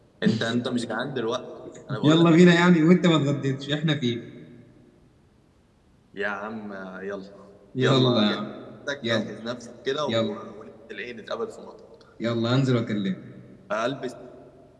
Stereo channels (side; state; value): both; identical; correlation 1.00